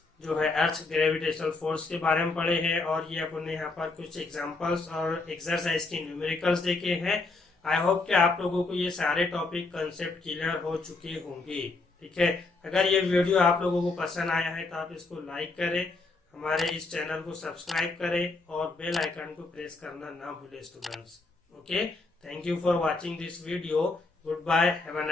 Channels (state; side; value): quieter; right; 3.5 dB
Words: जो है अर्थ ग्रेविटेशनल फोर्स के बारे में पढ़े हैं, और ये अपने यहाँ पर कुछ एग्जांपल्स और एक्सरसाइज के न्यूमेरिकल्स देखे हैं। आई होप कि आप लोगों को ये सारे टॉपिक कंसेप्ट क्लियर हो चुके होंगे। ठीक है, अगर ये वीडियो आप लोगों को पसंद आया है तो आप इसको लाइक करें, हमारे इस चैनल को सब्सक्राइब करें और बेल आइकन को प्रेस करना ना भूलें students. Okay, thank you for watching this video. Goodbye. Have a